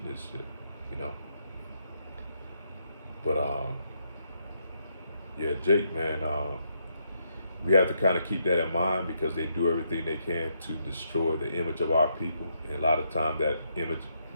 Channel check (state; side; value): inverted; both; correlation -0.77